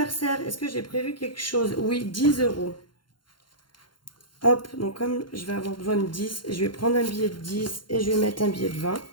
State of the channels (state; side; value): late; right; 0.72 ms